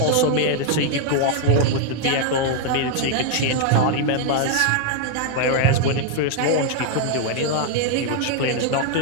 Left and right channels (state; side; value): different; both; correlation 0.00